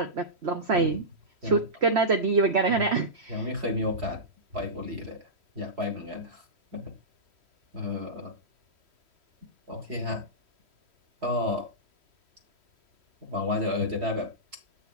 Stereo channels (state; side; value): late; left; 3.1 ms